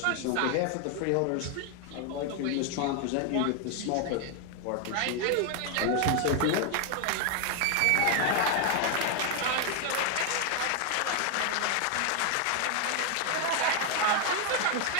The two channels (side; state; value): both; different; correlation 0.00